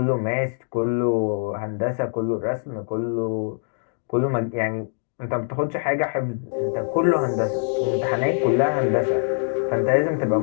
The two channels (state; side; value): silent; right; digital silence